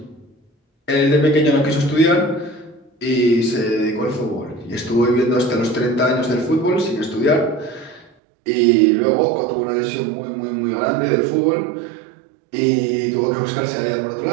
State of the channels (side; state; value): left; drops out; at 8.1 s